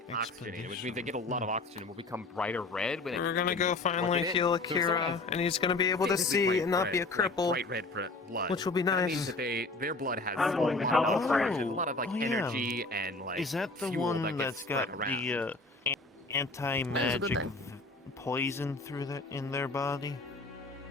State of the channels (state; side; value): quieter; right; 3.3 dB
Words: oxygenated, which means they get a lot of oxygen, will become brighter red when We're gonna when go you plug finally it in. heal So if someone Akira, has and he's gonna be able to physically see bright and not red, be a like cripple, bright red blood, which will be That nice. means that their blood has I'm a going to lot help of the oxygen, friend. a lot of like Oh, yeah. energy and like Is that the fuel one that gets that's got spread around. the anti-magic poison through in their body?